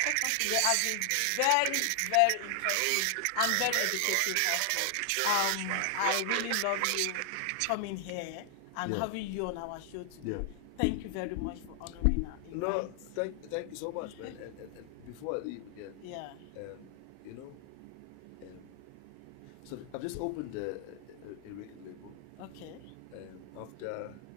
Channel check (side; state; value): both; different; correlation 0.00